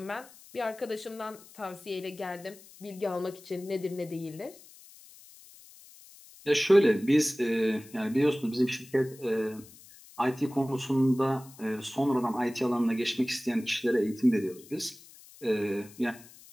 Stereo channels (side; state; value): left; noise; hiss, 22 dB below the sound